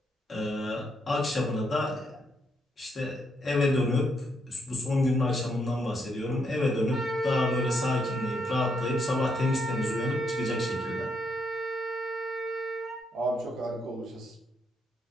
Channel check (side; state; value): both; normal; correlation 0.76